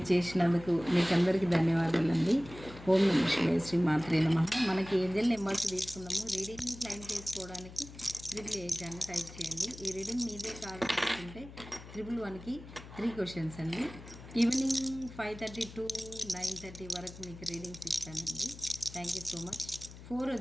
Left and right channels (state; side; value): noise; left; hum, 16 dB below the sound